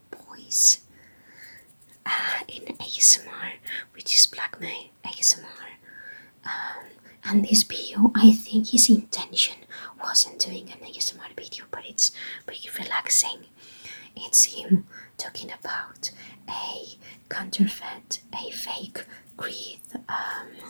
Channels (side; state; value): both; inverted; correlation -1.00